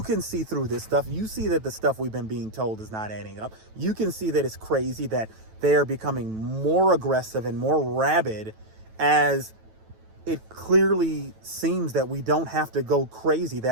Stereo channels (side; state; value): left; late; 9.1 ms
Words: can see through this stuff. You see that the stuff we've been being told is not adding up. You can see that it's crazy, that they are becoming more aggressive and more rabid, as it clearly seems that we don't have to go crazy,